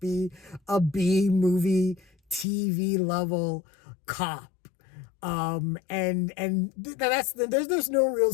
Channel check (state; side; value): drops out; right; at 2.5 s